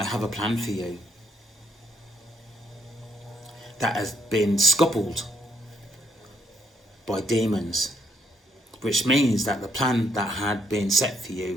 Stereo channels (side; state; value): both; normal; correlation 0.71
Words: have a plan for you that has been scuppered by demons, which means that the plan that had been set for